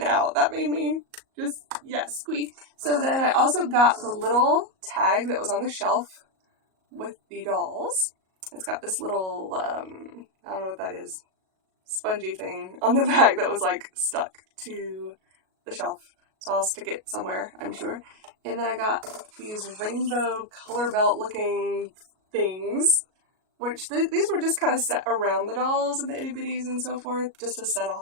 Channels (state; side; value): late; left; 37 ms